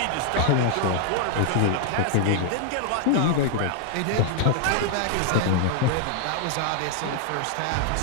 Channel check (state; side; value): different; both; correlation 0.00